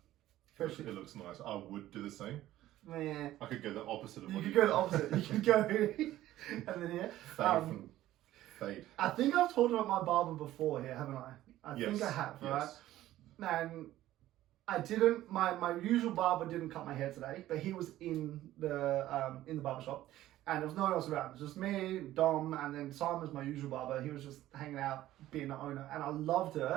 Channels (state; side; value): quieter; left; 14.4 dB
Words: It looks nice. I would do the same. Yeah. I could go the opposite of you what could go the opposite. You could go and then here. Fade. I think I've talked about my barber before here, haven't I? I Yes. think I have, right? Yes. And I didn't. My usual barber didn't cut my hair today, but he was in the barber shop, and there was no one else around. It was just me, Dom, and then Simon's my usual barber. He was just hanging out, being the owner, and I loved it.